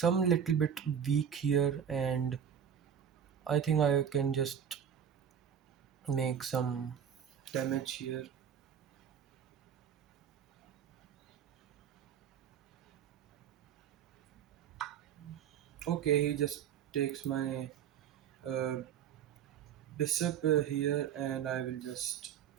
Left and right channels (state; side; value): quieter; left; 8.4 dB